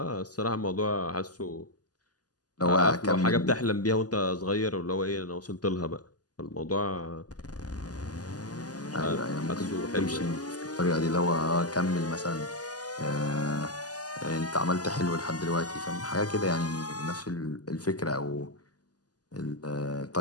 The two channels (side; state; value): right; late; 0.68 ms